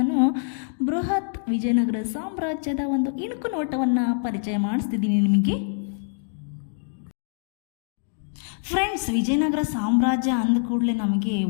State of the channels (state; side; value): silent; right; digital silence